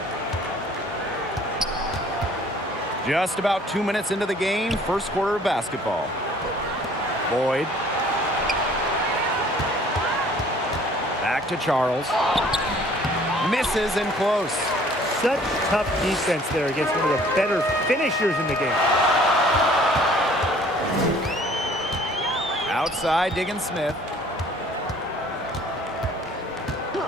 Just about 2 minutes into the game, first quarter of basketball. Boyd. Back to Charles. Misses in close. Such tough defense there against one of the better finishers in the game. Outside, Diggins-Smith.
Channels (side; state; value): both; normal; correlation 0.55